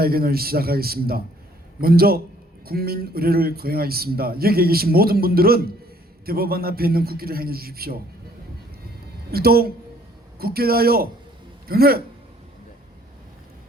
시작하겠습니다. 먼저 국민 의례를 거행하겠습니다. 여기에 계신 모든 분들은 대법원 앞에 있는 국기를 행해 주십시오. 일동 국기에 대하여 경례!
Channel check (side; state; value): both; normal; correlation 0.60